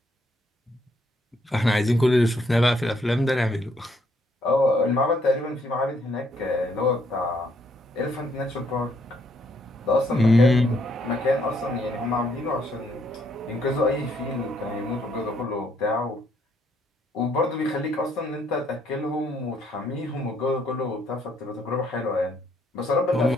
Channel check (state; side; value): normal; both; correlation 0.70